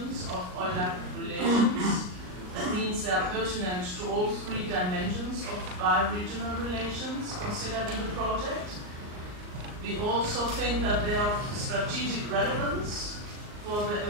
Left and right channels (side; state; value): left; late; 39 ms